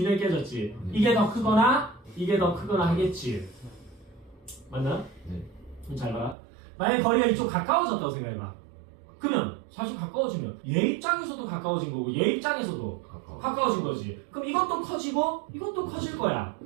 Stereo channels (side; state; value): left; drops out; at 6.4 s